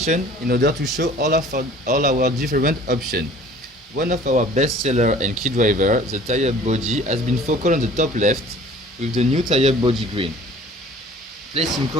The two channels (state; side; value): normal; both; correlation 0.49